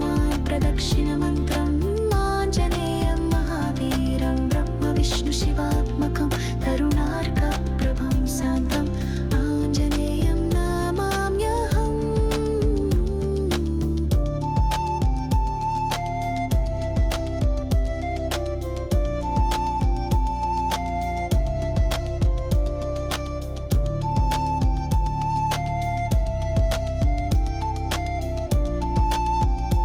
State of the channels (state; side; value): identical; both; correlation 1.00